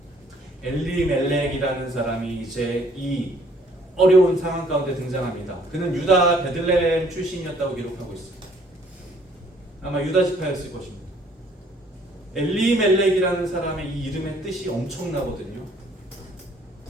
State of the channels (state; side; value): normal; both; correlation 0.61